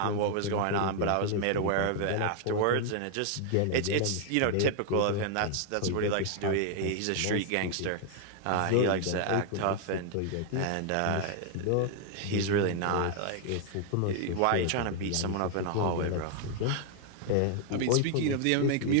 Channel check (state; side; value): different; both; correlation 0.00